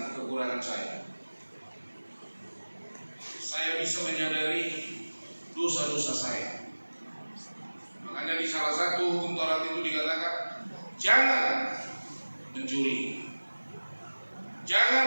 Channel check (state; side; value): inverted; both; correlation -1.00